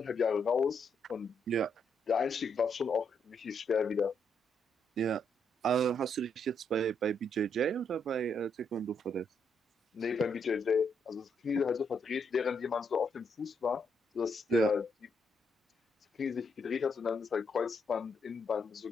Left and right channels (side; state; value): both; normal; correlation 0.76